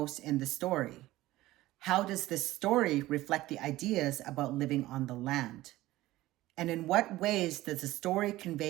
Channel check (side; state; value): left; quieter; 16.9 dB